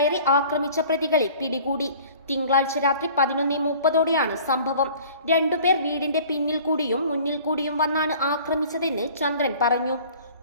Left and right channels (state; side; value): inverted; both; correlation -0.48